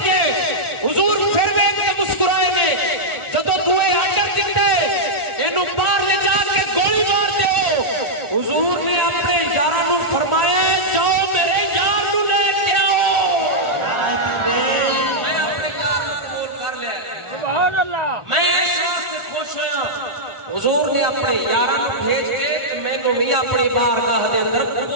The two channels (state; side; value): late; left; 1.4 ms